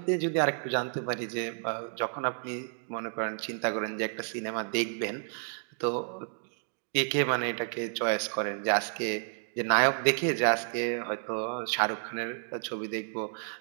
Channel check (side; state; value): left; silent; 57 dB below the other